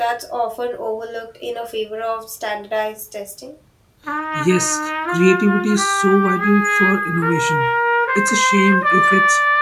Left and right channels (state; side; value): identical; both; correlation 1.00